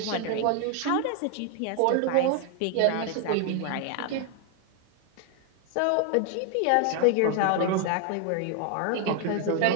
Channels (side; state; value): both; different; correlation 0.01